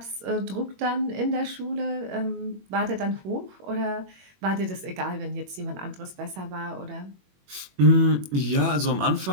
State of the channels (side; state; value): left; late; 21 ms